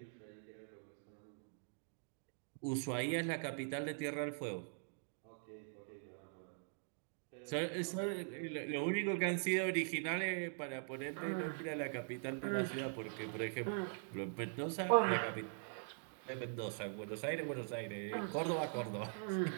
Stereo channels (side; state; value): left; silent; digital silence